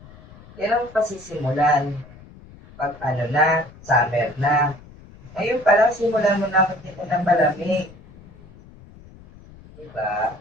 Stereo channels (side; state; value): left; noise; rumble, 21 dB below the sound